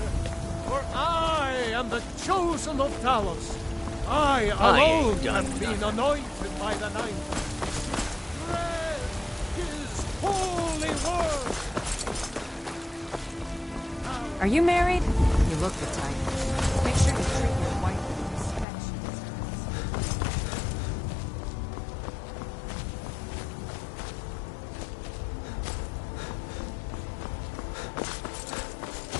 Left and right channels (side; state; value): right; drops out; at 18.7 s